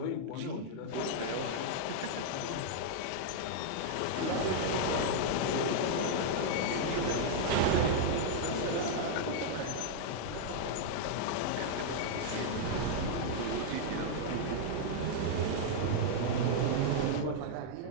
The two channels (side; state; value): both; different; correlation -0.01